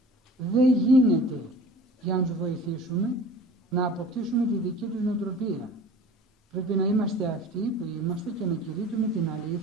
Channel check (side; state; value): both; normal; correlation 0.43